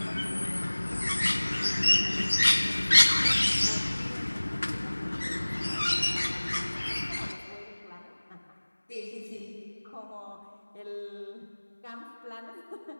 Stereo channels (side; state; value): both; inverted; correlation -1.00